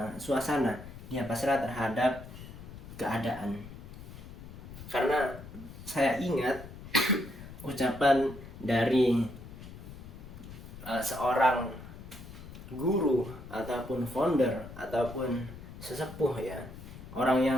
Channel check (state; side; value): noise; left; rumble, 14 dB below the sound